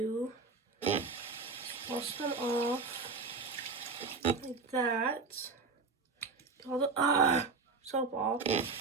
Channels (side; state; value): left; quieter; 4.4 dB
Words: is wash them off like that. Get all the soap off.